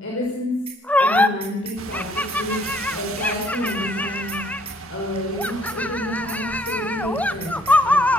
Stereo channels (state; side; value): normal; both; correlation 0.64